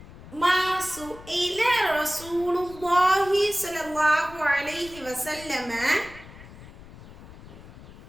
ما سئل رسول الله صلى الله عليه وسلم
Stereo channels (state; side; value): noise; left; rumble, 18 dB below the sound